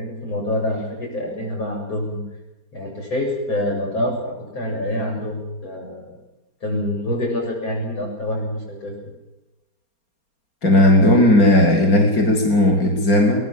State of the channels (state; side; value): late; right; 4.3 ms